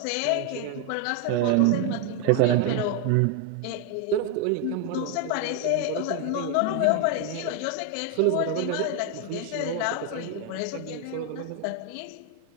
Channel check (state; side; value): different; both; correlation 0.01